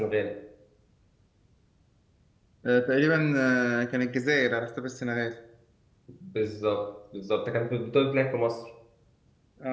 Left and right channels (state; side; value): identical; both; correlation 1.00